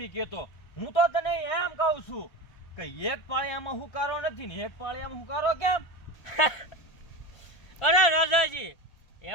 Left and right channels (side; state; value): right; late; 1.4 ms